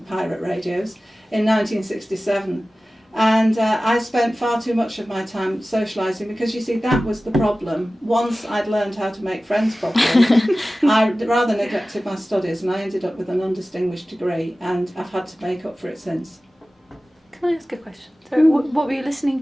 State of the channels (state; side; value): normal; both; correlation 0.96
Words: pirate radios, in 1967. And I spent far too much of my time socialising because, you see, that was the problem. Once I'd learned how to make friends properly, I rather neglected my studies, and I ended up with an undistinguished degree, and I've had to make up for it since. Can I ask a question? So, what were you listening